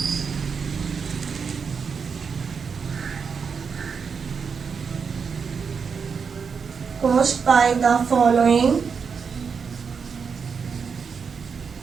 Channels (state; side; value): quieter; left; 5.9 dB